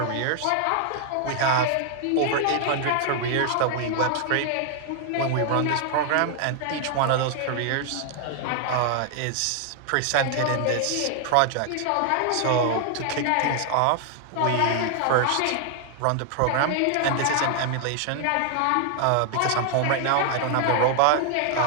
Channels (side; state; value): both; different; correlation 0.00